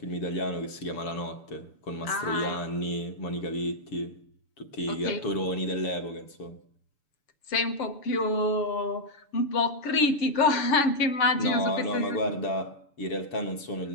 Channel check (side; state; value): right; late; 6.9 ms